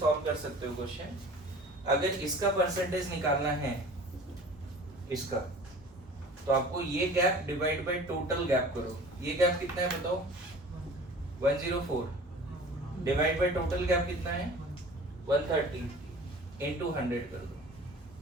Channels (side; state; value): both; normal; correlation 0.43